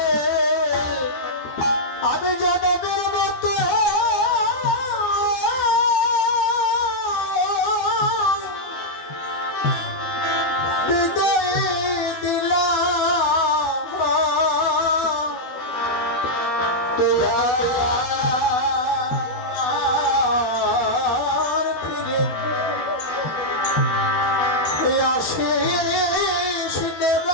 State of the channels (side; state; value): right; late; 12 ms